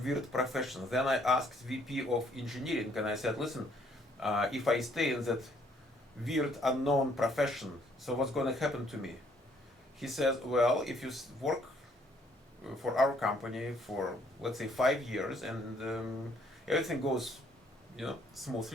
weird professions. Then I asked VP of engineering, and I said, listen, if I stay in that weird unknown profession, so what's going to happen to me? He says, well, if you work for our company for, let's say, 5 years, and everything goes,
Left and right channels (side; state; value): both; normal; correlation 0.66